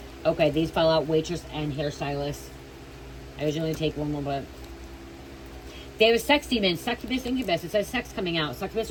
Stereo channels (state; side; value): identical; both; correlation 1.00